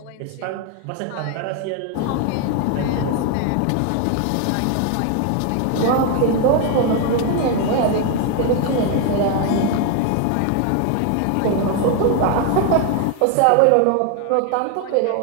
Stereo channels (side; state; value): both; different; correlation 0.01